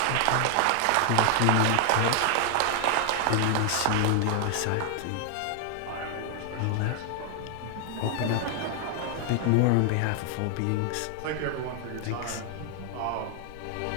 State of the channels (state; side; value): different; both; correlation 0.00